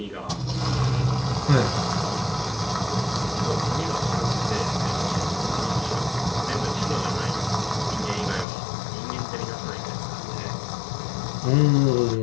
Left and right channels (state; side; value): drops out; right; at 8.5 s